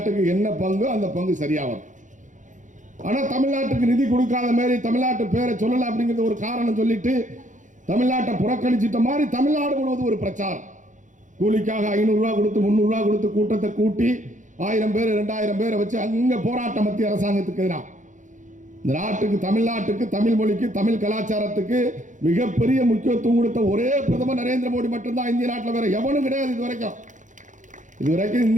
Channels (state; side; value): late; left; 0.36 ms